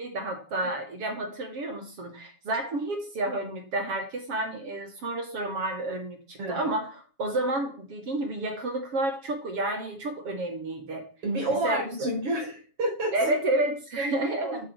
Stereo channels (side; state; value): left; late; 7.2 ms